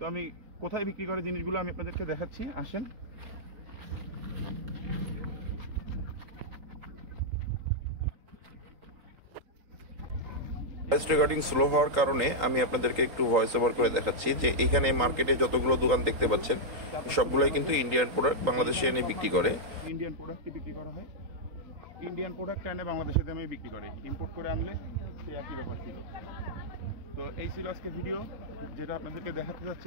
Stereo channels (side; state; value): left; late; 3.9 ms